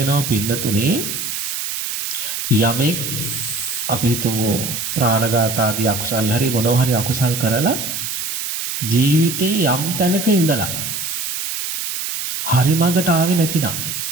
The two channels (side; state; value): right; noise; hiss, 3 dB below the sound